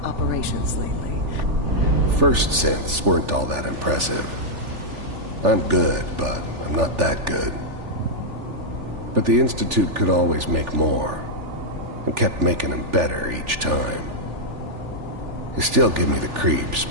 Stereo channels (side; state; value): left; late; 3.4 ms